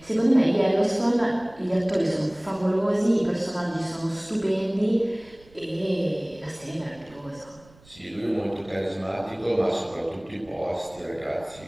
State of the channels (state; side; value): noise; right; rumble, 26 dB below the sound